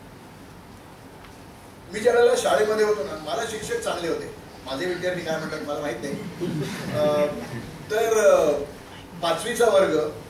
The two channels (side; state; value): both; identical; correlation 1.00